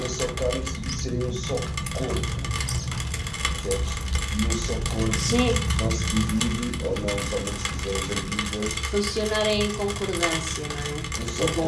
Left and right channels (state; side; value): identical; both; correlation 1.00